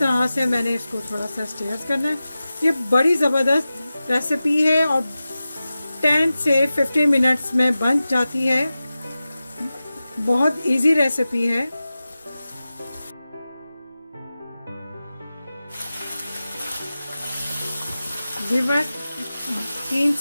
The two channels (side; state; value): both; inverted; correlation -0.95